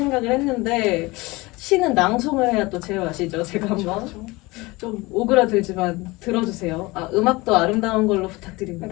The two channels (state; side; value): quieter; right; 22.5 dB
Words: 했는데 시는 낭송을 해야 또 제맛이죠. 제가 한번 좀 오그라들지만 들어주세요. 음악도 아름다운 걸로